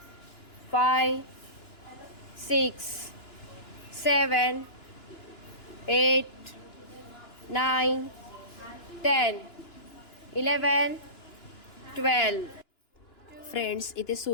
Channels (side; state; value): right; late; 2.9 ms